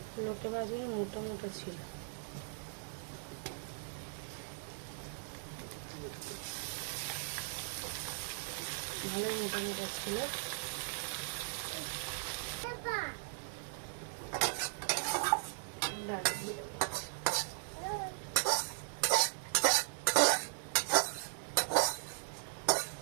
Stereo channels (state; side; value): silent; left; digital silence